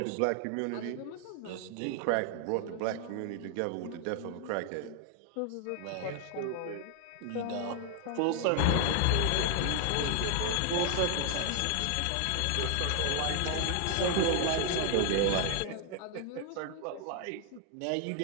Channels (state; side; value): different; both; correlation 0.00